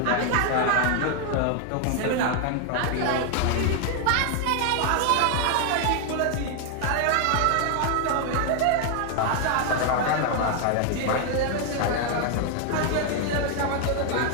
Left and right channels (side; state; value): both; different; correlation 0.00